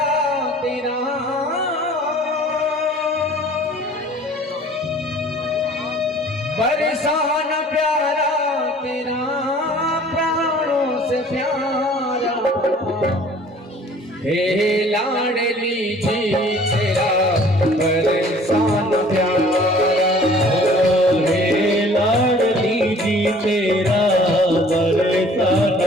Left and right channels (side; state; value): both; normal; correlation 0.51